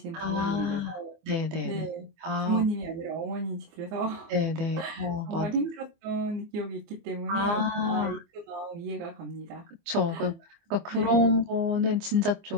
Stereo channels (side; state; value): left; late; 24 ms